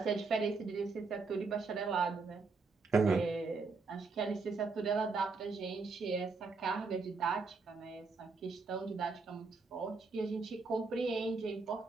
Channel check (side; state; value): left; quieter; 4.3 dB